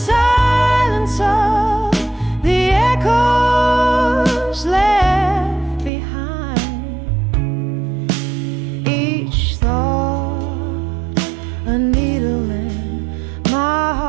of the echoes left behind. Each thought a needle in my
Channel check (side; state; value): left; drops out; at 5.9 s